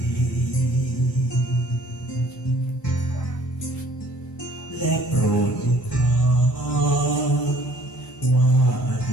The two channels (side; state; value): both; normal; correlation 0.55